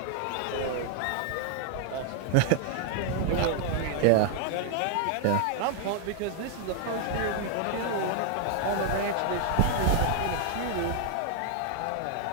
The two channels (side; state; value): both; different; correlation 0.00